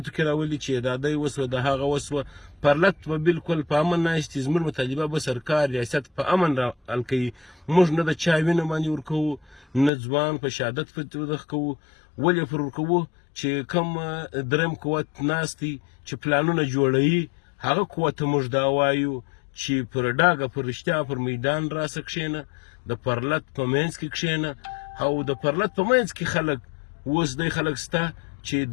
کې راولي چې دا دی وسوه د هغه وسوه. پرلت به بالکل په امن ناست دي. زموږ مطالبه به سرکار ریاست په امن را حل کوي. موږ نه د چا وینه باندې ورکوو، نه ځوان په شهادت ودغه کوو. ولې پر ورکوو چې کوم درېیم قوت ناست دی چې پلانونه جوړوي، هغه قوت ته موږ دا وایو چې پر ډاګه پر رښتیا پر میدان راسه کښېنه، د پرلت په منځ کې کښېنه. او د پرلت په منځ کې خلک اوس دی خلک شته چې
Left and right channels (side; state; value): right; drops out; at 9.9 s